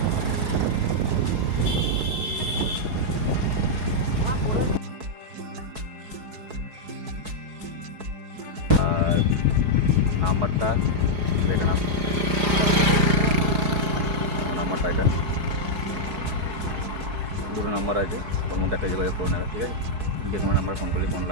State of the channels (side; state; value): left; late; 4.7 ms